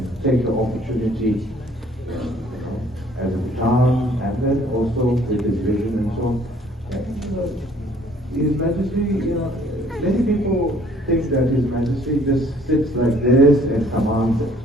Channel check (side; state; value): both; normal; correlation 0.58